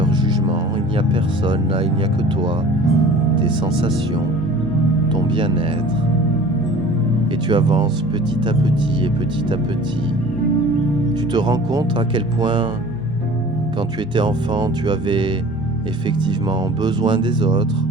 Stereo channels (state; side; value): normal; both; correlation 0.44